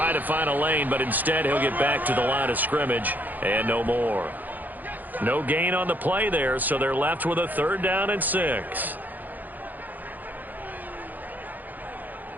to find a lane, but instead he'll get back to the line of scrimmage and no more. No gain on the play there, so they're left with a 3rd down and 6.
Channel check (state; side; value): late; left; 0.084 ms